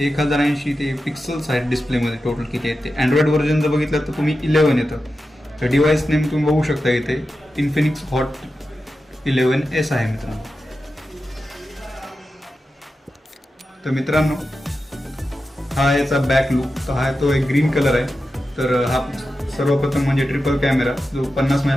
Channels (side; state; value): both; normal; correlation 0.91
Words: ते पिक्सल्स आहेत डिस्प्लेमध्ये टोटल किती आहेत ते. अँड्रॉइड व्हर्जन जर बघितलं तर तुम्ही 11 येतं. तर डिव्हाइस नेम तुम्ही बघू शकता इथे इन्फिनिक्स हॉट 11S आहे मित्रांनो. तर मित्रांनो हा याचा बॅक लुक. तर हा तो एक ग्रीन कलर आहे. तर हा सर्वप्रथम म्हणजे ट्रिपल कॅमेरा जो 50